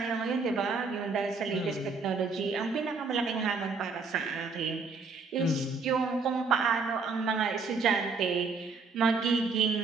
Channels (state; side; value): quieter; left; 4.5 dB